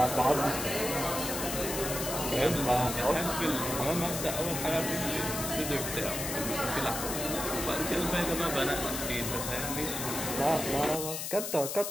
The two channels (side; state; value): left; noise; hiss, 4 dB below the sound